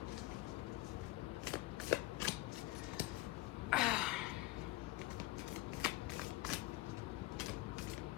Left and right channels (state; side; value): quieter; right; 18.6 dB